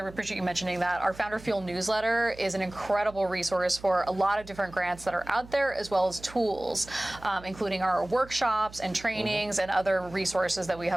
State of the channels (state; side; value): noise; right; hum, 18 dB below the sound